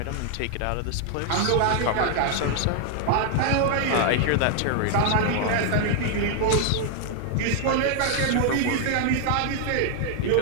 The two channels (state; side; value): different; both; correlation 0.00